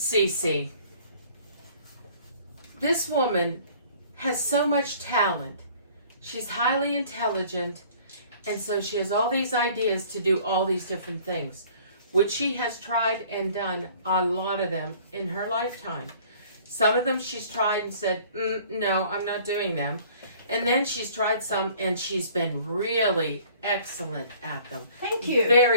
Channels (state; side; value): inverted; both; correlation -0.53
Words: this woman has so much talent. She's highly intelligent, and so she has all these ideas to do all these different things, which she has tried and done a lot of them in her lifetime. Some of them she's tried and said, no, I'm not doing them. And then she's tried some and she's been really excellent at them. Thank you.